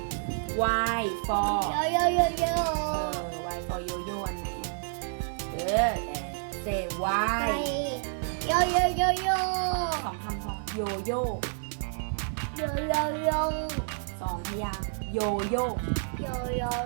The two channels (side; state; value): left; silent; digital silence